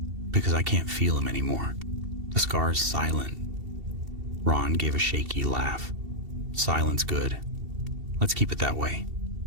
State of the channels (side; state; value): left; late; 2.7 ms